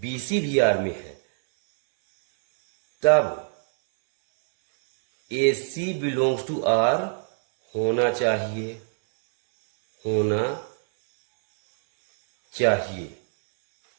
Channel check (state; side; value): silent; left; 63 dB below the other